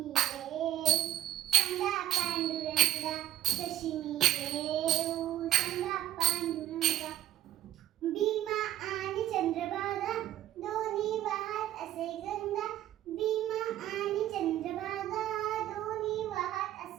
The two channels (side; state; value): left; quieter; 13.0 dB